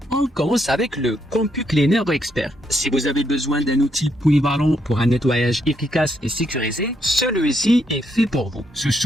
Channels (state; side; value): normal; both; correlation 0.76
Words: On commence avec le CompuCleaner Expert. Si vous avez besoin d'un outil polyvalent pour un nettoyage efficace et sécurisé, celui-ci est fait pour vous. Ce